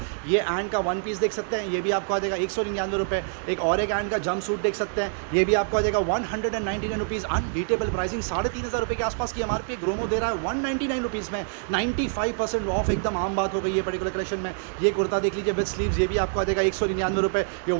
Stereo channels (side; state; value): left; silent; digital silence